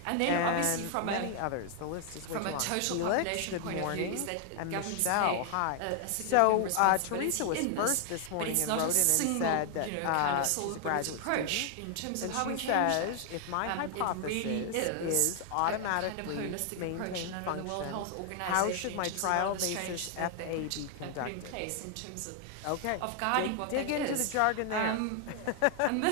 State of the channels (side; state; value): both; different; correlation 0.00